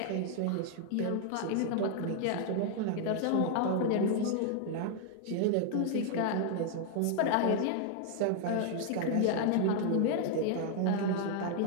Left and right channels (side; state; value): both; different; correlation 0.00